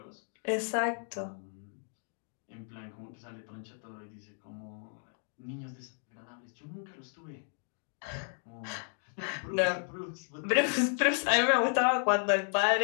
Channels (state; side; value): silent; right; 56 dB below the other